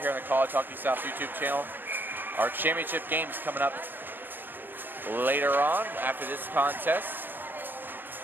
on the College Hockey South YouTube channel. Our championship game's coming up later on after this contest.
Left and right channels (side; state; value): left; late; 0.094 ms